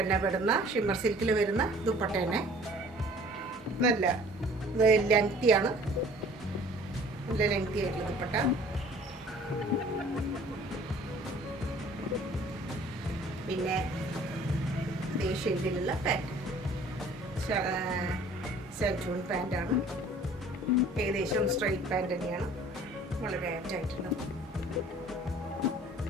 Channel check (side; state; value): both; normal; correlation 0.51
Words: തന്നെ വരുന്ന, ഷിമ്മർ സിൽക്കിൽ വരുന്ന ദുപ്പട്ട തന്നെ നല്ല ലെങ്തിയാണ്, നല്ല ലെങ്തി ആയിട്ടുള്ള ദുപ്പട്ട. പിന്നെ ഇതേ ഷെയ്ഡിലുള്ള പാൻറ്, സെൽറ്റൂൺ പാൻറ്റാണ്. ഏകദേശം സ്ട്രൈറ്റ് പാൻറ് തന്നെയാണ്, വളരെ ആപ്റ്റായിട്ടുള്ള.